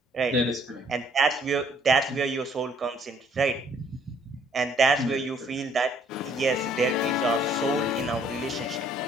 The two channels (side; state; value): both; normal; correlation 0.62